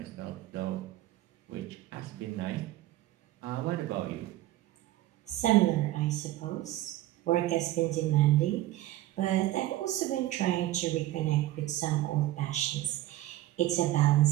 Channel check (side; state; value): left; quieter; 15.2 dB